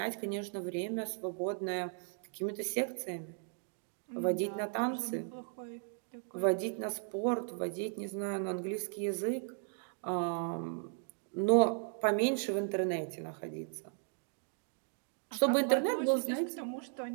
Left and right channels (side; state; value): left; silent; 54 dB below the other